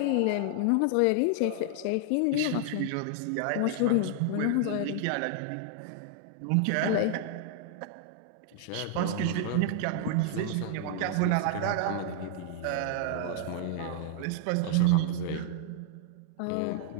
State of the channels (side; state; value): both; different; correlation 0.00